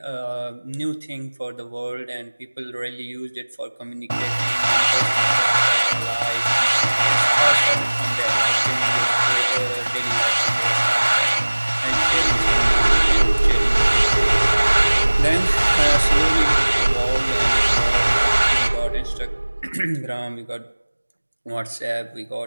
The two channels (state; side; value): inverted; both; correlation -1.00